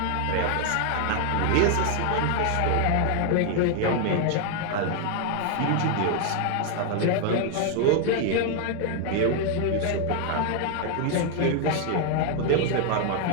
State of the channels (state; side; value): different; both; correlation 0.00